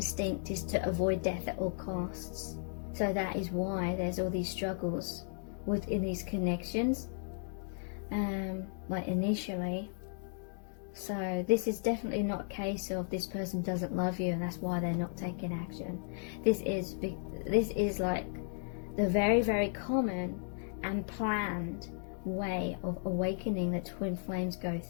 is to avoid death at all costs. So that is why there's all these struggles within these connections, like initially. So this is definitely not a case of this person doesn't love you and that's why they're not taking action. This is like the very, very common and planned way of awakening that twin flames go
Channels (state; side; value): silent; right; 54 dB below the other